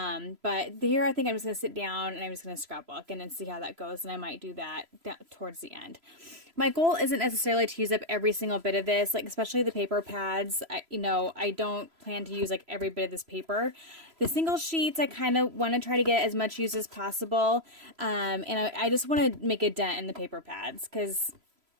here I think I'm just going to sit down and I'm just going to scrapbook and then see how that goes. And I might do that towards the end. My goal isn't necessarily to use up every single bit of this, like especially the paper pads. I don't plan to use like every bit of this paper. The single sheets, I kind of want to try to get as much use as possible. And I just want to make a dent in the paper pads, because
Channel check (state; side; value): late; left; 3.0 ms